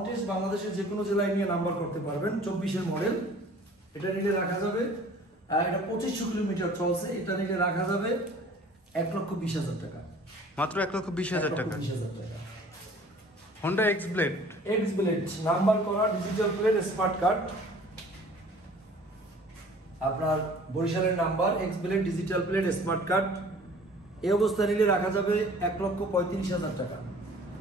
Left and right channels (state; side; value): normal; both; correlation 0.49